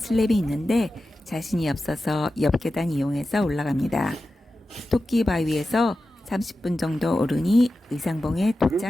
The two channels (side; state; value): both; normal; correlation 0.93